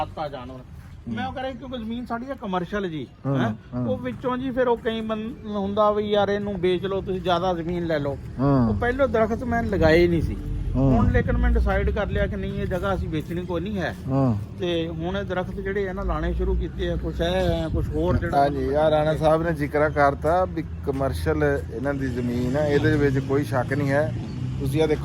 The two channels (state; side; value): identical; both; correlation 1.00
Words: ਆ ਜਾਨਵਰ। ਮੈਂ ਉਹ ਕਰਾਂ ਕਿਉਂਕਿ ਜ਼ਮੀਨ ਸਾਡੀ ਆ ਕਮਰਸ਼ੀਅਲ ਜੀ, ਉਹ ਵਿੱਚੋਂ ਜੀ ਫਿਰ ਉਹ ਕਈ ਹੁੰਦਾ ਵੀ ਯਾਰ ਇਹਨੂੰ ਵੇਚ ਲਓ ਤੁਸੀਂ, ਜ਼ਿਆਦਾ ਜ਼ਮੀਨ ਲੈ ਲਓ। ਉਹ ਪਹਿਲੋਂ ਦਰਖਤ ਮੈਂ ਲਗਾਏ ਨਹੀਂ ਸੀ, ਹੁਣ ਲੇਕਿਨ ਮੈਂ ਡਿਸਾਈਡ ਕਰ ਲਿਆ ਕਿ ਨਹੀਂ ਇਹ ਜਗ੍ਹਾ ਅਸੀਂ ਵੇਚਣੀ ਕੋਈ ਨਹੀਂ ਹੈ, ਤੇ ਹੁਣ ਇਹ ਦਰਖਤ ਜਿਹੜੇ ਆ ਨਾ ਲਾਣੇ ਸ਼ੁਰੂ ਕੀਤੇ ਆ। ਕੁਛ ਹੈ ਕੁਛ ਹੋਰ ਜਿਹੜਾ ਹਾਂਜੀ ਯਾਰ ਰਾਣਾ ਸਾਹਿਬ ਨੇ ਜ਼ਿਕਰ ਕਰਤਾ ਵੀ ਕਮਰਸ਼ੀਅਲ ਇਹਨਾਂ ਦੀ ਜ਼ਮੀਨ ਹੈ, ਇਹਦੇ ਵਿੱਚ ਕੋਈ ਸ਼ੱਕ ਨਹੀਂ ਹੈ। ਤੁਸੀਂ ਆ